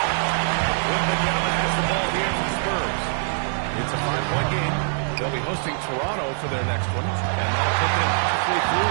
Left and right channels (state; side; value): silent; left; digital silence